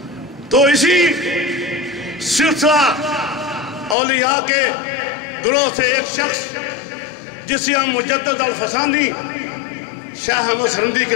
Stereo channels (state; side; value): drops out; right; at 4.0 s